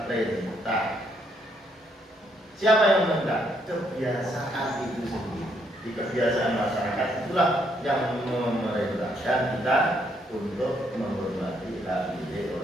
perintah. Siapa yang meminta? Kebiasaan itu sendiri. Di kebiasaan masyarakat itulah yang memerintahkan kita untuk menghormati hak milik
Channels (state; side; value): normal; both; correlation 0.72